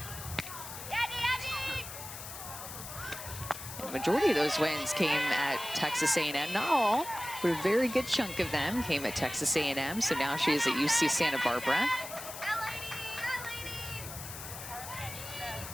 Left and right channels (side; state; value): left; noise; hiss, 10 dB below the sound